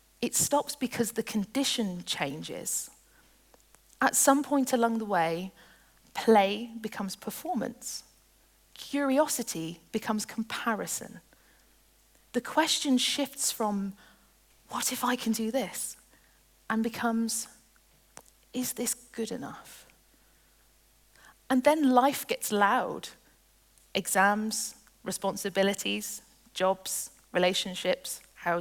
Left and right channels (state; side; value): identical; both; correlation 1.00